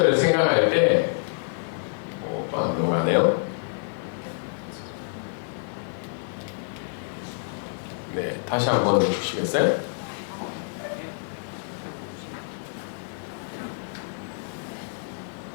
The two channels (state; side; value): silent; right; digital silence